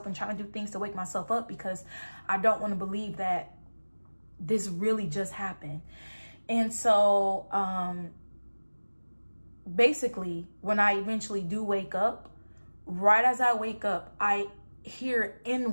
and trying to do things to wake myself up, because I don't want to believe that this really just happened. And so basically, when I eventually do wake up, right as I wake up, I hear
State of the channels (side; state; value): both; inverted; correlation -1.00